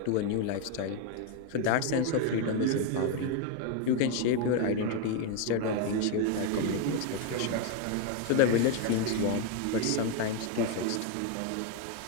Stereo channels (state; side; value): different; both; correlation 0.01